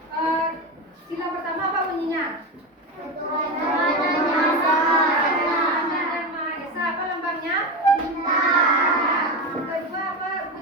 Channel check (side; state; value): both; normal; correlation 0.18